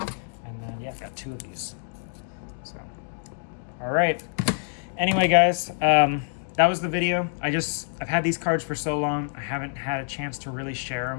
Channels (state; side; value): silent; right; digital silence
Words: and then yeah, I've got 2 of these. So, all right. Anyway, guys, that was the video. I've had these cards for so long. I haven't had a chance to really share